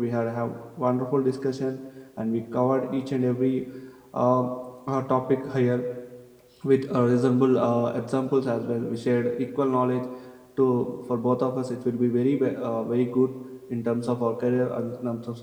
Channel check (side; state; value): both; identical; correlation 1.00